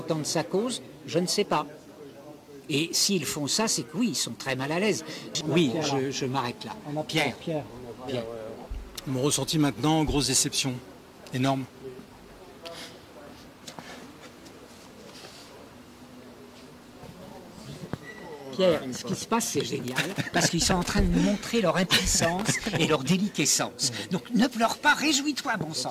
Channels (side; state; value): both; identical; correlation 1.00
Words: sa cause? Je ne sais pas. Et s'ils font ça, c'est que oui, ils sont très mal à l'aise. Oui, je m'arrête là. Pierre. Mon ressenti maintenant, grosse déception. Énorme. Pierre, ce qui se passe, c'est génial, parce qu'ils sont en train de nous montrer leur impuissance et leur déliquescence. Donc ne pleure pas, réjouis-toi, bon